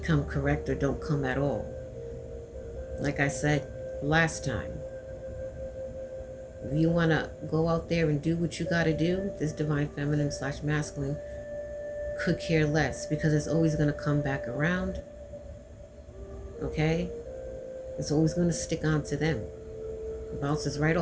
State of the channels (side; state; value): both; identical; correlation 1.00